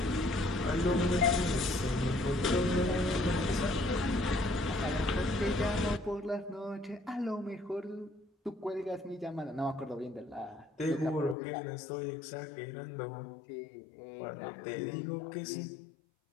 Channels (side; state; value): right; drops out; at 11.4 s